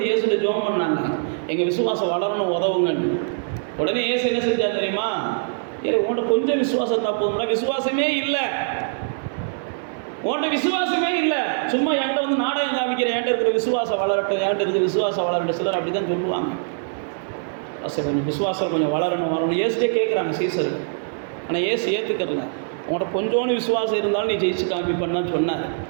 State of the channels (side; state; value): left; silent; 63 dB below the other